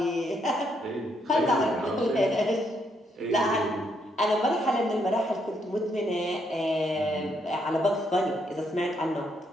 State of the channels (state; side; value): normal; both; correlation 0.75